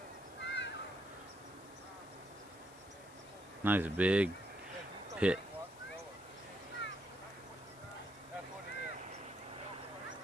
Nice big pit.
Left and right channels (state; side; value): noise; left; hiss, 21 dB below the sound